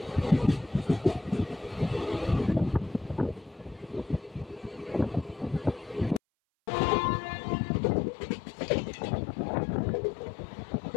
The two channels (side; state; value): right; drops out; at 6.2 s